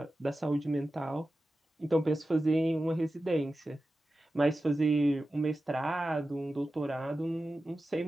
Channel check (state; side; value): normal; both; correlation 0.93